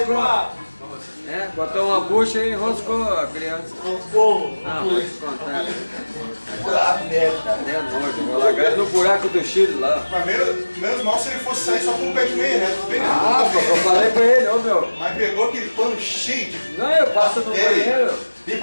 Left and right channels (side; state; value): both; inverted; correlation -1.00